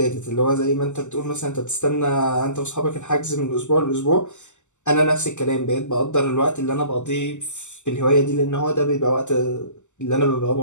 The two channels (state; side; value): late; right; 0.84 ms